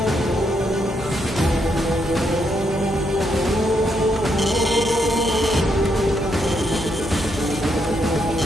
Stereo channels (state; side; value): normal; both; correlation 0.77